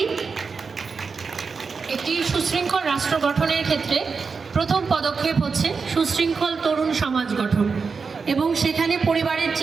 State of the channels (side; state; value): left; quieter; 5.0 dB